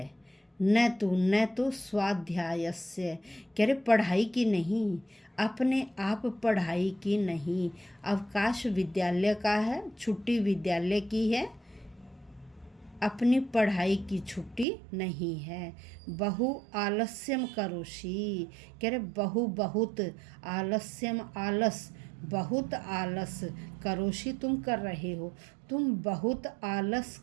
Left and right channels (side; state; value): left; drops out; at 14.7 s